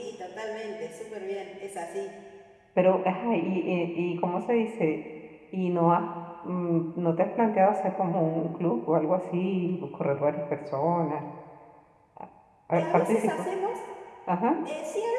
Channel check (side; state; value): both; identical; correlation 1.00